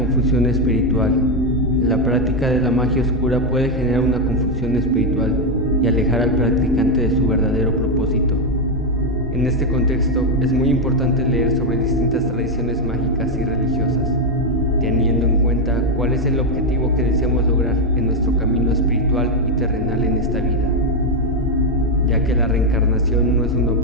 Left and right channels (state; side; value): normal; both; correlation 0.04